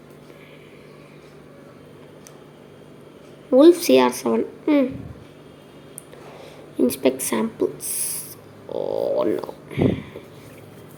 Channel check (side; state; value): both; identical; correlation 1.00